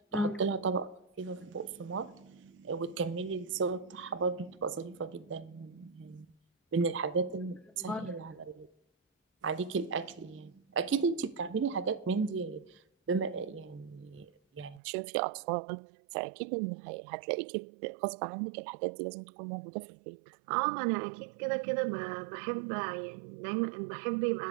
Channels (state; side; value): drops out; left; at 14.8 s